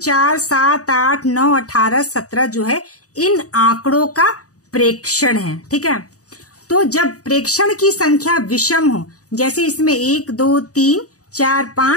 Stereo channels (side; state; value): right; late; 0.66 ms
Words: 7, 8, 9, 18, 17 जो है इन आंकड़ों का प्रेक्षण है। ठीक है, तो जब प्रेक्षण की संख्या विषम हो, जैसे इसमें 1, 2, 3, 4,